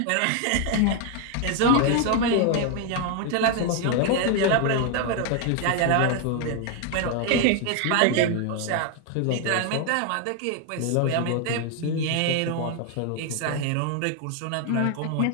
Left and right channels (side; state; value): both; different; correlation 0.01